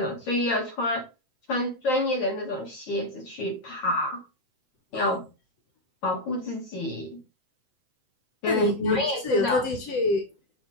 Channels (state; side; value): late; right; 7.8 ms